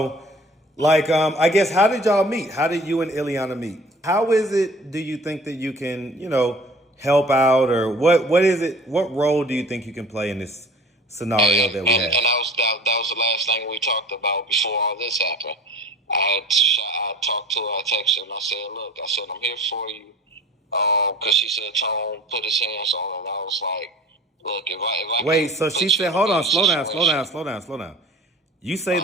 I guess, how did y'all meet? How did you and Ilana meet? How is it, do you think that you can, help out, or what is it, what role do you think you can play in this scenario And that we and, have? and that was the last thing we talked about before all this happened. I talked to her, I texted her, and I said, "Look, I said I'm here for you." Because she said Tone put his hands on her, and I was like, "Look, if I Wait, can so she put you said, in a hold on, better slow situation." down. You say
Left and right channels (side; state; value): both; normal; correlation 0.45